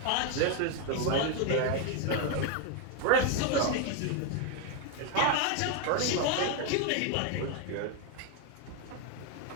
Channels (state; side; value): different; both; correlation 0.01